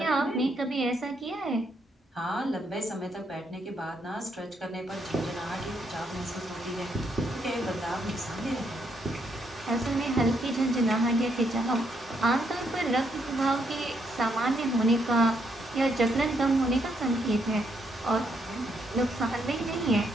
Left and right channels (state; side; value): normal; both; correlation 0.75